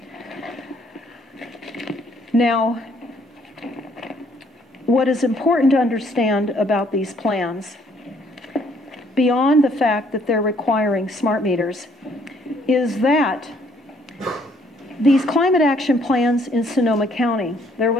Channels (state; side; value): normal; both; correlation 0.64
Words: Now, what is important to understand about these plans, beyond the fact that they're requiring smart meters, is that these climate action plans in Sonoma County, there